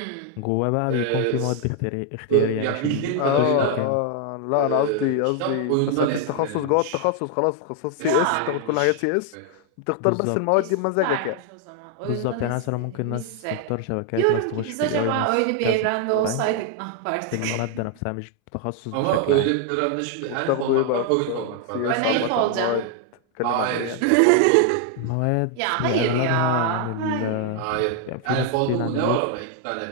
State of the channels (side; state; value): both; different; correlation 0.00